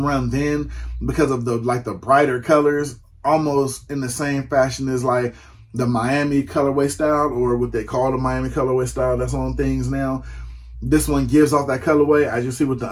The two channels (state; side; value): identical; both; correlation 1.00